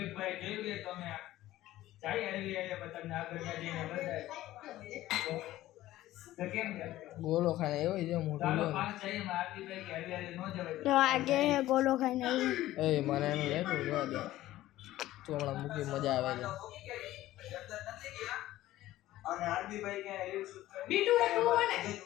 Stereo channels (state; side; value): quieter; right; 15.3 dB